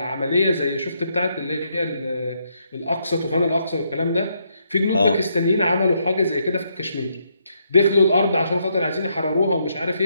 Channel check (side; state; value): both; inverted; correlation -0.76